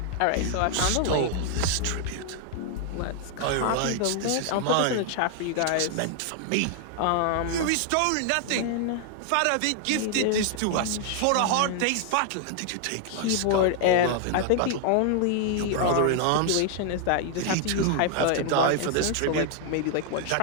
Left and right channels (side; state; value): both; different; correlation 0.00